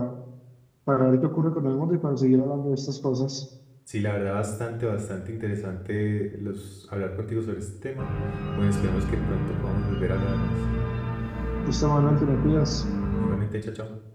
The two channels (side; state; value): both; identical; correlation 1.00